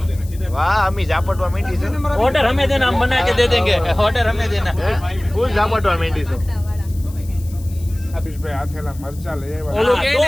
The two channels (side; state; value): left; noise; hiss, 22 dB below the sound